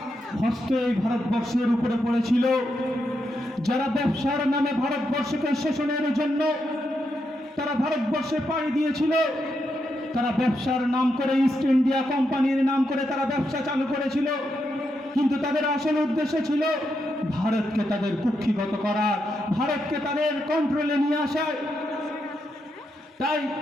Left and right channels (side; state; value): both; normal; correlation 0.83